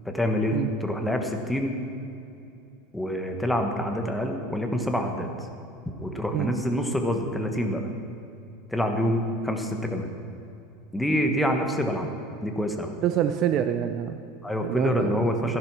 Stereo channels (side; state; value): both; normal; correlation 0.56